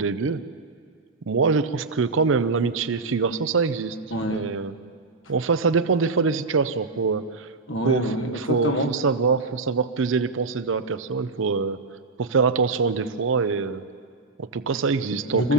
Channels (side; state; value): left; quieter; 3.9 dB